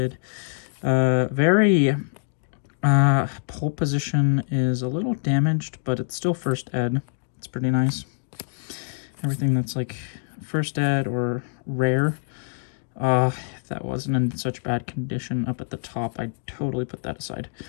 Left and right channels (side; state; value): right; silent; 58 dB below the other